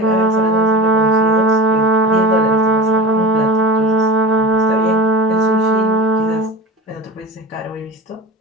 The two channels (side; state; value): both; normal; correlation 0.34